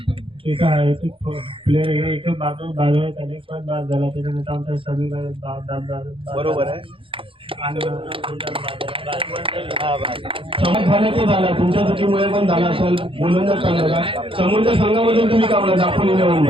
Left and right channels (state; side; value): late; left; 0.26 ms